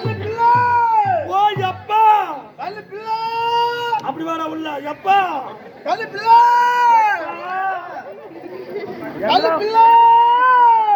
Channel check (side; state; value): both; identical; correlation 1.00